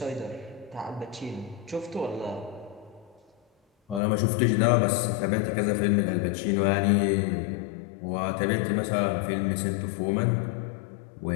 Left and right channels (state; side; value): drops out; right; at 4.0 s